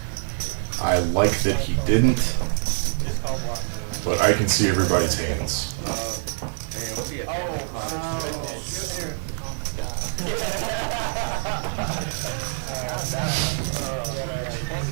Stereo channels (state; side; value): silent; left; digital silence